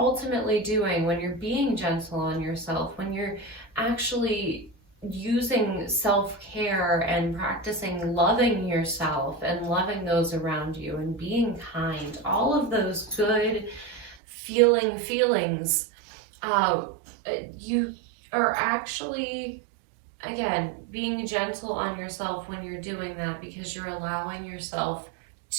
doing when you're being gentle on yourself, when you're actually using self-care and practicing loving yourself and loving those around you and being kind, all of those good feelings, you are actually, again, being gentle on yourself when you're doing that, because you're allowing yourself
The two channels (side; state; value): left; drops out; at 14.2 s